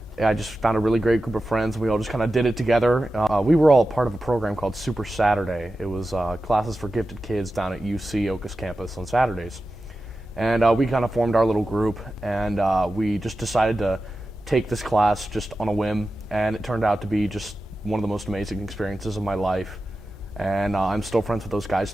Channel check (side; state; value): both; normal; correlation 0.93